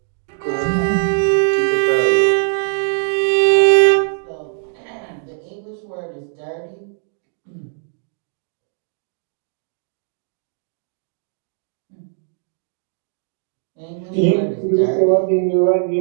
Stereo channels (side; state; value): left; silent; digital silence